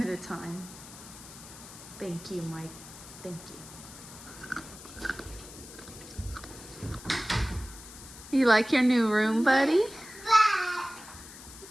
at a time. Thank you, Mike. Thank you. You like your new room, buddy?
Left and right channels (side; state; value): left; noise; hiss, 16 dB below the sound